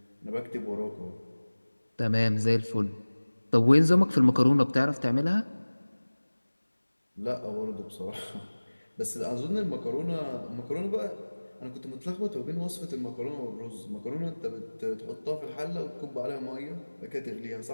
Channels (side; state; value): both; inverted; correlation -1.00